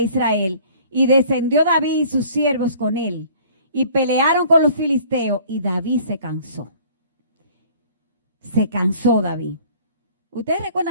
Israel y descendió David y sus siervos con él y pelearon con los filisteos y David se cansó. Se cansó David. Ustedes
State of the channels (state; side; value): inverted; both; correlation -0.52